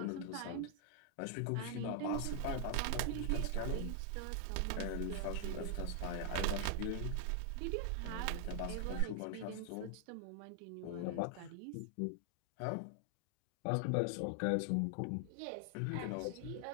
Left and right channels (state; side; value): different; both; correlation 0.00